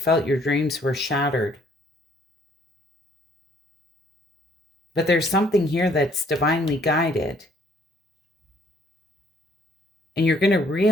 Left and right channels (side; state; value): both; normal; correlation 0.62